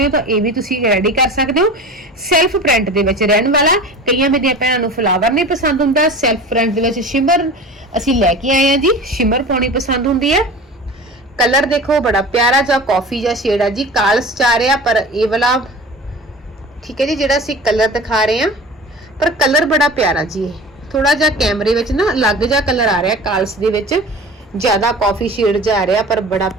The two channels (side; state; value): both; normal; correlation 0.36